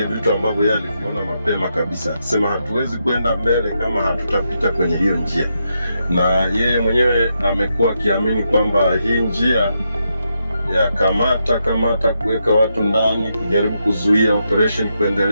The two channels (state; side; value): inverted; both; correlation -0.82